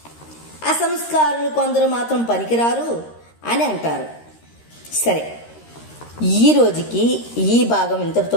అసంస్కారులు కొందరు మాత్రం పనికిరారు అని అంటారు. సరే, ఈ రోజుకి ఈ భాగం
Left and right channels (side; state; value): right; late; 13 ms